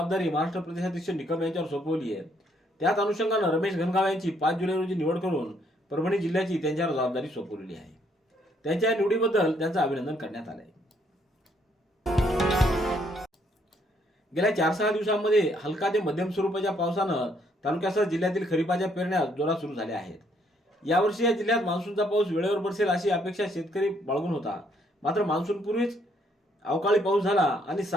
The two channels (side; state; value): both; normal; correlation 0.69